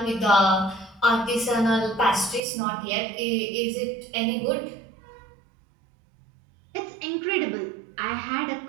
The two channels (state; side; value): drops out; left; at 2.4 s